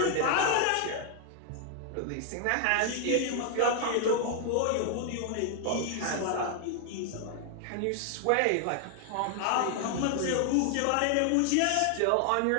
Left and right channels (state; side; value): different; both; correlation 0.00